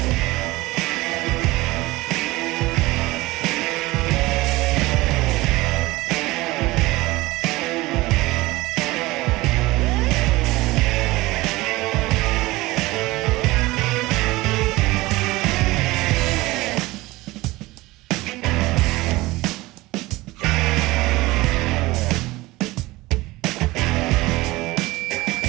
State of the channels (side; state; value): left; quieter; 20.1 dB